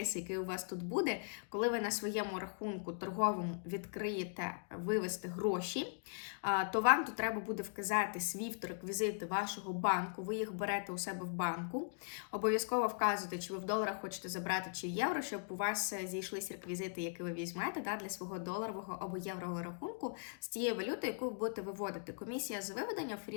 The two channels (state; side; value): silent; right; digital silence